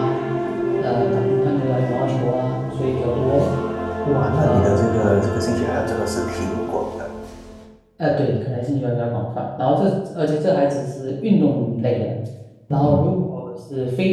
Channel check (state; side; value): identical; both; correlation 1.00